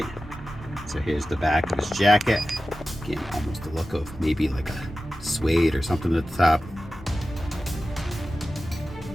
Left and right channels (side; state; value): both; normal; correlation 0.94